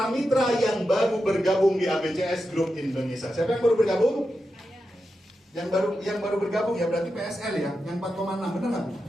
yang baru bergabung di ABCS Group Indonesia. Siapa yang baru bergabung? Yang baru bergabung ya berarti PSL ya, yang 4,6 benar nggak?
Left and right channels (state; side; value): normal; both; correlation 0.89